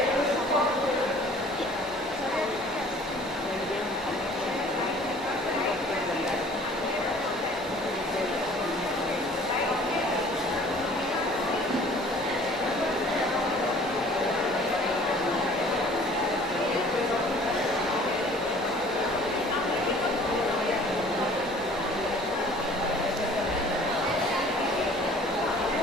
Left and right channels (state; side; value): normal; both; correlation 0.51